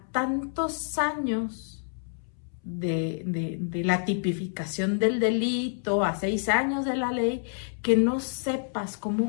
tantos años de la tipificación del delito, a 6 años de la ley, que no sepas cómo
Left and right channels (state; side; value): silent; right; 59 dB below the other